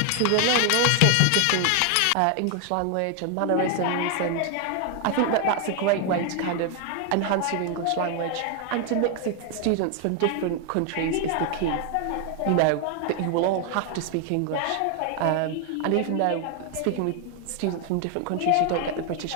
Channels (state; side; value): different; both; correlation 0.00